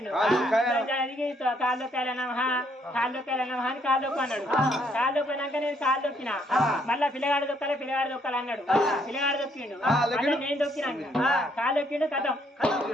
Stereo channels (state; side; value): normal; both; correlation 0.69